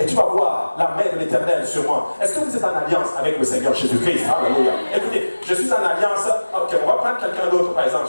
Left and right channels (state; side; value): inverted; both; correlation -1.00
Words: tu vas voir la main de l'Éternel sur moi. Est-ce que vous êtes en alliance avec le Seigneur Jésus-Christ? Alléluia. Écoutez, je suis en alliance. Ok, on va prendre quelqu'un d'autre, par exemple.